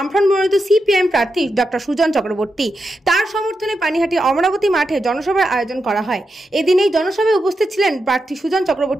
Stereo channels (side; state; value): both; normal; correlation 0.87